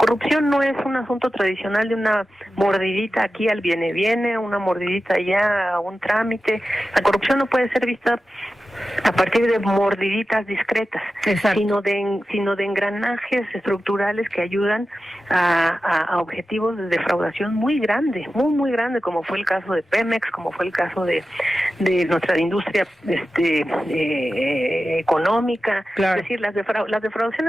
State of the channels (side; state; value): both; normal; correlation 0.93